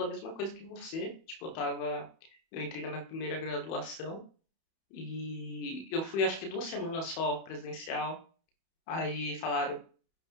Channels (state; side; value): late; right; 31 ms